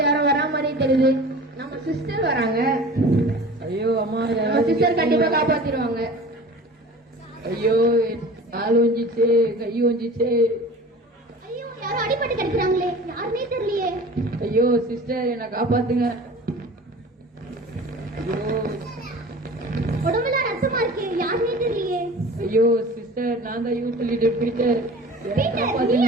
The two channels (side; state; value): both; normal; correlation 0.40